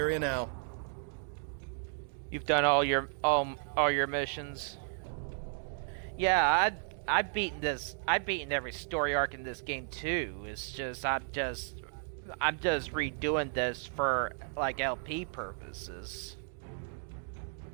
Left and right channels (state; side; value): silent; left; 55 dB below the other